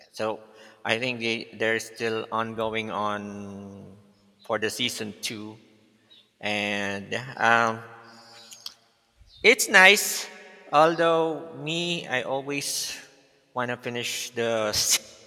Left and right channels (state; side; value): identical; both; correlation 1.00